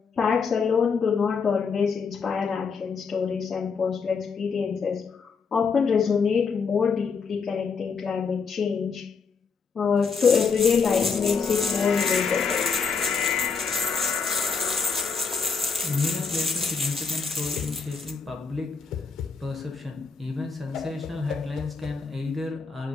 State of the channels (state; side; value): quieter; right; 5.3 dB